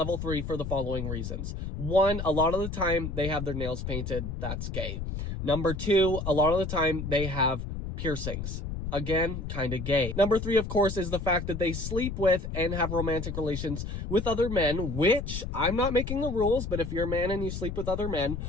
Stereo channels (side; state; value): left; noise; rumble, 5 dB below the sound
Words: 3 for the following reasons. 1, a lot of the time they have their nails painted. That's gay. Number 2, a lot of the time they have piercings. Again, kind of gay. Number 3, of course, is the fact that they sleep with and have romantic relations with other men, which I'm not making the rules, but if you're a man and you sleep with other men,